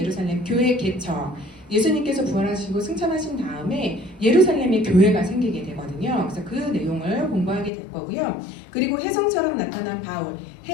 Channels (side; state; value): right; drops out; at 7.7 s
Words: 교회 개척 예수님께서 부활하시고 승천하신 다음에 예루살렘에 교회가 생기게 되거든요. 그래서 그 내용을 공부하게 될 거고요. 그리고 혜성처럼 나타난 바울,